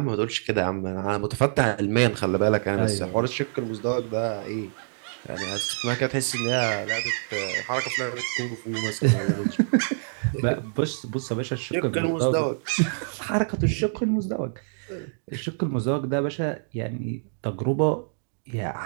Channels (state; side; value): silent; left; digital silence